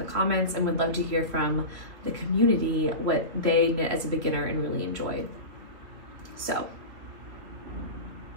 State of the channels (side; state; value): left; late; 3.1 ms